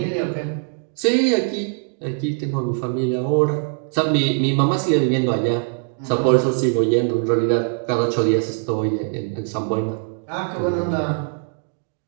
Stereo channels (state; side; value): silent; left; 58 dB below the other